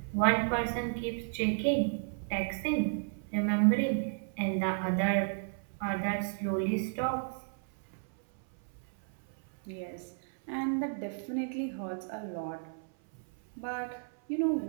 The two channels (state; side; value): silent; left; 56 dB below the other